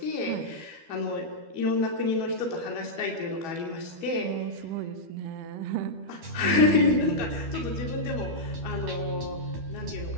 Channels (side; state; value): left; late; 12 ms